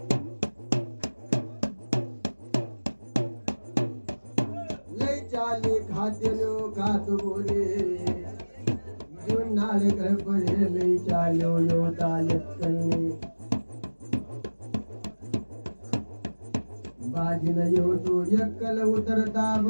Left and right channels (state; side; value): inverted; both; correlation -1.00